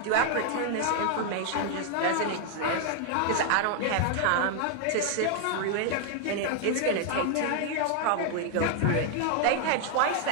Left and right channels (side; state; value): both; different; correlation 0.00